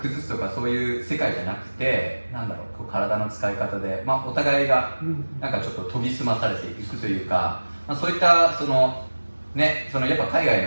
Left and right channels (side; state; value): both; inverted; correlation -1.00